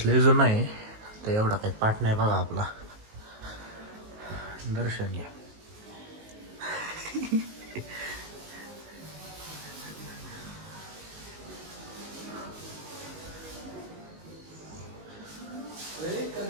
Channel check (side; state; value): left; late; 19 ms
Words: लय जुना आहे, तर एवढा काही पाठ नाही बघा आपला. दर्शन घ्या.